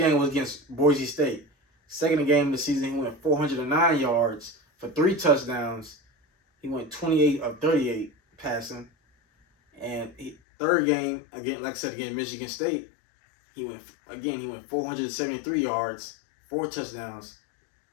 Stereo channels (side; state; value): right; drops out; at 10.4 s